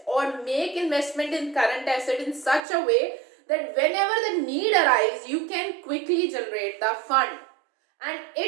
or make investment in current asset in such a way that whenever the need arises, you can quickly generate the fund. And it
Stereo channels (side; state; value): left; drops out; at 2.6 s